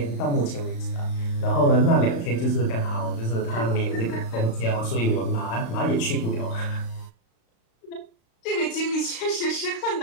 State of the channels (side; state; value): right; late; 35 ms